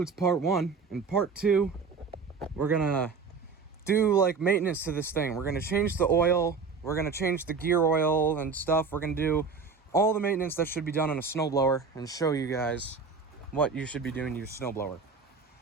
part 1. In part 2, we're gonna do like maintenance to this thing. We're gonna change the oil, we're gonna change the gear oil and stuff. We're gonna do all the maintenance that should be done on a snowblower and show you guys what you should be doing to your snowblower.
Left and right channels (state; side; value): quieter; left; 5.1 dB